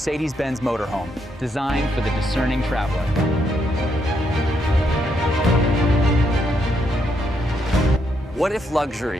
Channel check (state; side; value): normal; both; correlation 0.77